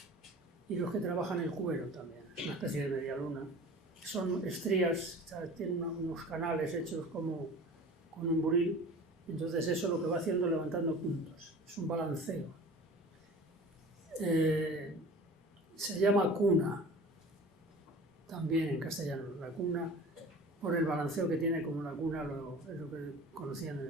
y los que trabajan el cuero también, es una especie de media luna. Son estrías, tienen unos canales hechos como con un buril, entonces eso lo que va haciendo es levantando puntos, es un balanceo. Se llama cuna, también en castellano, la cuna, por el balanceo que tiene como la cuna, es lo que conocían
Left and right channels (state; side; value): normal; both; correlation 0.41